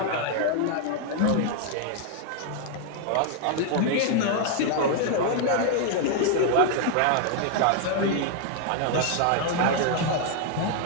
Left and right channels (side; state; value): both; different; correlation 0.00